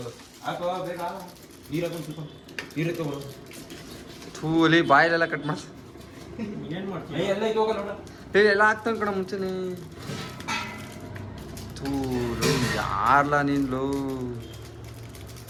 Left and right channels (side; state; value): both; identical; correlation 1.00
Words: ಹಾಕೋ ಬೇಗ ನೀರು ಹಾಕೊಂಡು ಸ್ವಲ್ಪ ನೀರು ಎತ್ತೋ ಬರೋ ಥೂಲಿ ಬಾಯಲ್ಲೆಲ್ಲ ಕಟ್ ಮಾಡಿ ಏನು ಮಾಡ್ತೀವಿ ಎಲ್ಲ ಹೋಗಲ್ಲ ನೋಡ ಎಲ್ಲ ಹಾಕ್ತಾನೆ ಕಣ ಮುಂಚೆನೆ ಯಾರ್ಲ ನೀನು